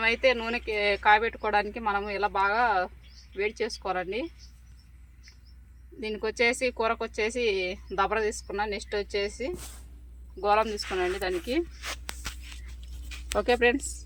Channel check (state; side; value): identical; both; correlation 1.00